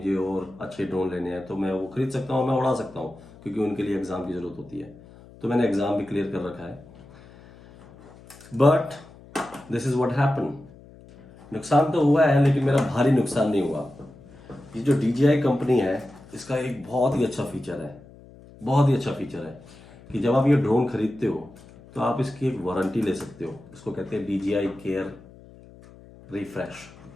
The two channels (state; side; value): noise; left; hum, 22 dB below the sound